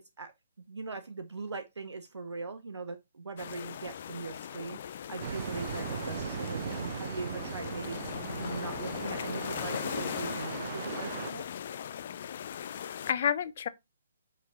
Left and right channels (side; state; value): both; inverted; correlation -0.63